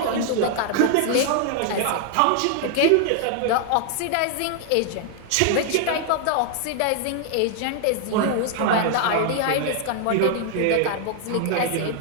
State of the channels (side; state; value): both; different; correlation 0.00